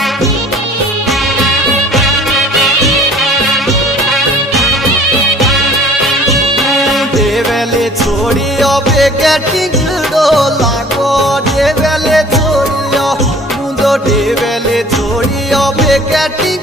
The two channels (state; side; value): normal; both; correlation 0.50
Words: देवेले छोड़ियो बेगे टिंगड़ो लागो देवेले छोड़ियो मुंडो देवेले छोड़ियो बेगे